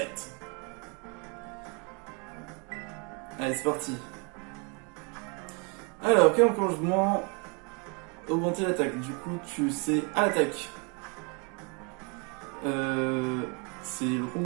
Allez, c'est parti. Alors, quel enclenchement? Augmenter l'attaque. Du coup, tu sais à l'attaque. C'est le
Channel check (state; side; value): quieter; left; 33.3 dB